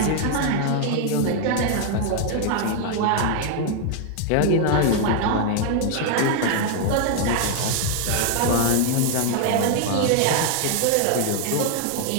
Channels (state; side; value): different; both; correlation 0.00